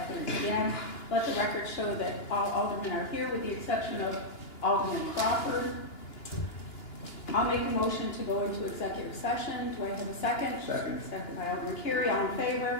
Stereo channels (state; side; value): late; right; 2.9 ms